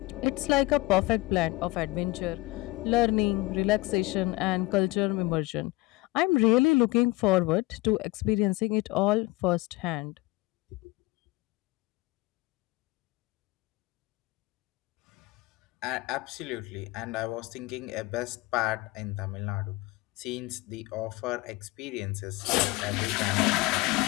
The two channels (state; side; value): quieter; right; 20.4 dB